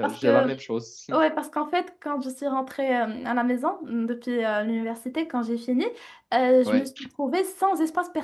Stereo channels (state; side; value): identical; both; correlation 1.00